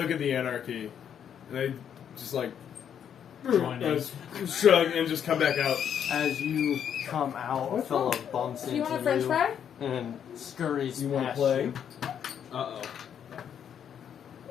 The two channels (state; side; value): quieter; right; 8.7 dB